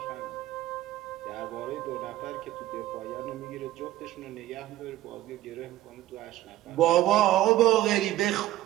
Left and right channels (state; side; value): quieter; left; 14.8 dB